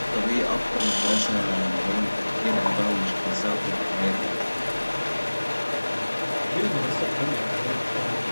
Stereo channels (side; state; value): both; inverted; correlation -1.00